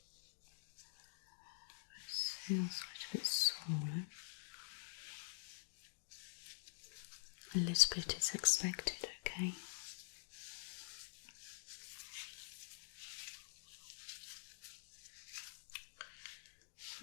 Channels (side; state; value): right; silent; digital silence